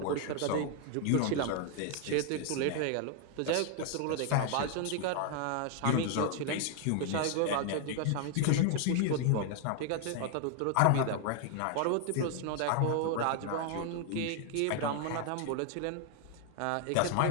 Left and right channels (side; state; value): both; different; correlation 0.00